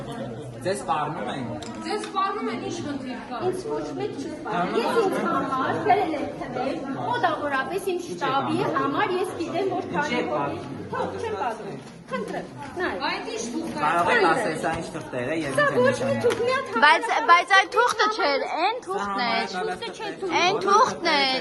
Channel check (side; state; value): both; identical; correlation 1.00